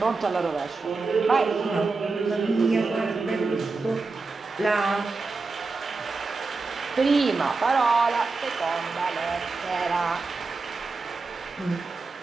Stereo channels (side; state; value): left; quieter; 4.0 dB